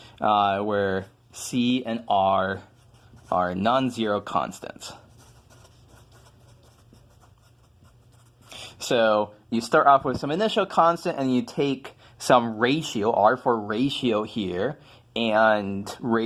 where c and r are non-zero constants. So you start off with some initial constant and you take some ratio, r for ratio here, and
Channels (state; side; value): identical; both; correlation 1.00